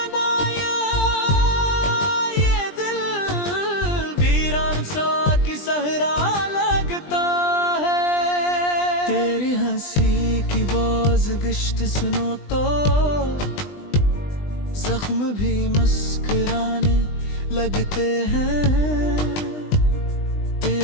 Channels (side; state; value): right; late; 20 ms